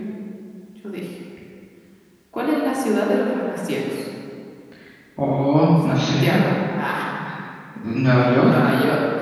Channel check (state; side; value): identical; both; correlation 1.00